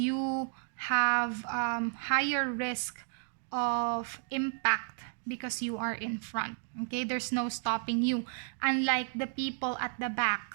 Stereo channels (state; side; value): silent; left; 56 dB below the other